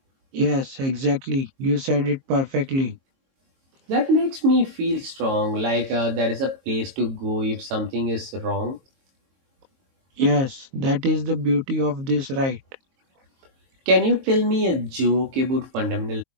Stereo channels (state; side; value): late; left; 22 ms